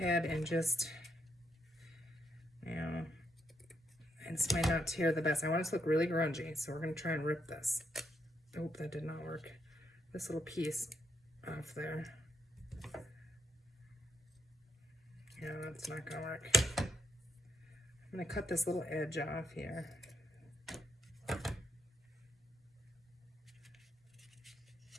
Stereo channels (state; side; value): normal; both; correlation 0.78